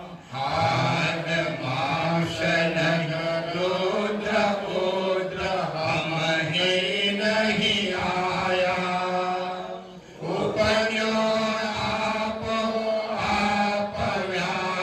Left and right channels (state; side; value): identical; both; correlation 1.00